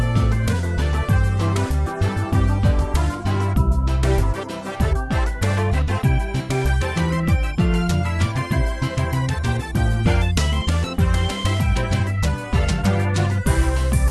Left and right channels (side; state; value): both; identical; correlation 1.00